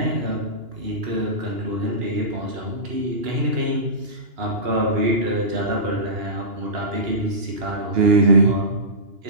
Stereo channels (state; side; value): late; left; 2.8 ms